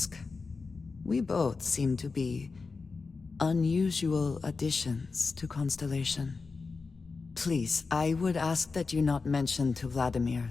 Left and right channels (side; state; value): right; quieter; 4.4 dB